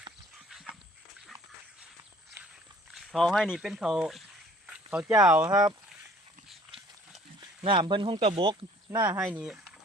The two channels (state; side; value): normal; both; correlation 0.54